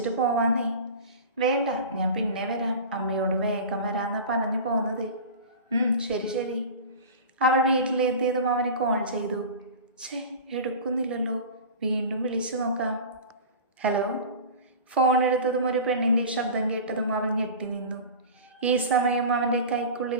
പോവാന്നേ. വേണ്ട, ഞാൻ പിന്നെ വരാം. അമ്മയോട് വേഗം വരാമെന്നാണ് പറഞ്ഞു പോകുന്നത്. ശരി ശരി. അവൾ വീട്ടിലെത്തിയതും അവനെ കോൾ ചെയ്തു. എടുക്കുന്നില്ലല്ലോ. വീണ്ടും വിളിച്ചു നോക്കാം. ഹലോ. ഫോൺ എടുത്തതും ഒരു പെണ്ണിൻ്റെ ശബ്ദം കേട്ടതും അവൾ ഞെട്ടി നിന്നു. ഈ സമയം അവൻ്റെ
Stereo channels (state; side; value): inverted; both; correlation -0.33